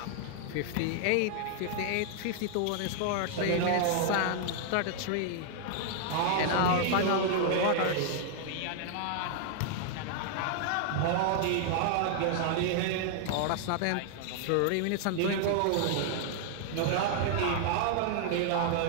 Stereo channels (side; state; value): both; different; correlation -0.01